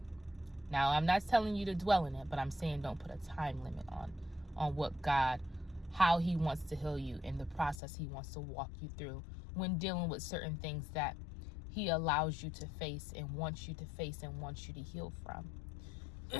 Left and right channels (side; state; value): right; drops out; at 7.8 s